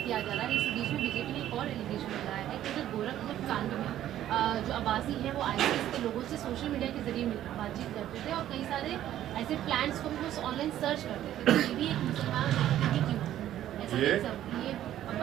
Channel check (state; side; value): quieter; left; 12.2 dB